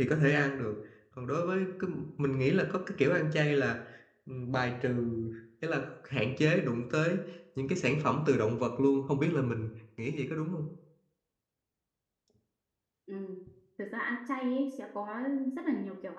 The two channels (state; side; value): identical; both; correlation 1.00